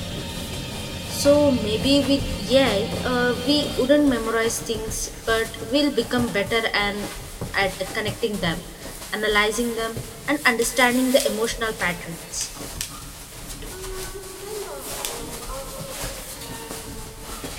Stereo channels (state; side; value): identical; both; correlation 1.00